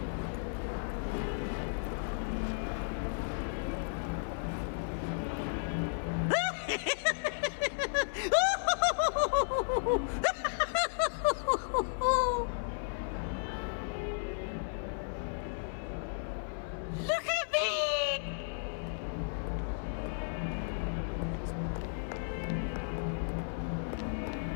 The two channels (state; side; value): silent; right; 55 dB below the other